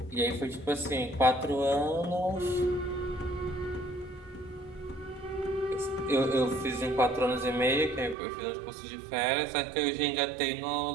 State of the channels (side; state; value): left; drops out; at 8.2 s